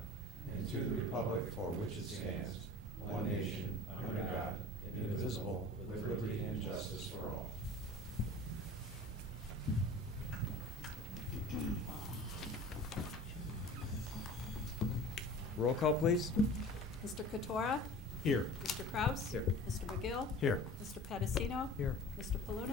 and to the republic for which it stands, one nation, under God, indivisible, with liberty and justice for all. Roll call, please. Mr. Katora? Here. Mr. Kraus? Here. Mr. McGill? Here. Mr. Pedicino? Here. Mr.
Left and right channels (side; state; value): both; normal; correlation 0.40